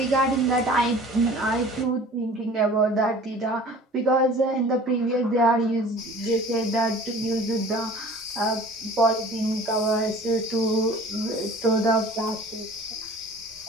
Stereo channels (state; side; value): normal; both; correlation 0.45